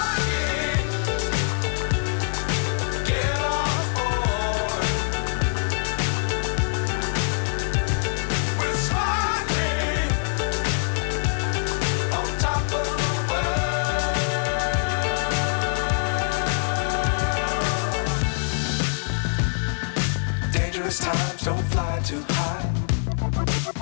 Times don't fly too high.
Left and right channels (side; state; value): right; silent; digital silence